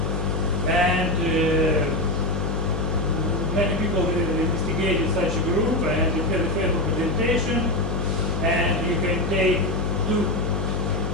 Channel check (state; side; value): noise; left; hum, 2 dB below the sound